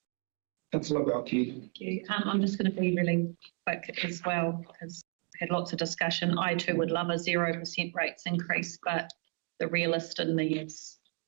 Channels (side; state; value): left; quieter; 36.7 dB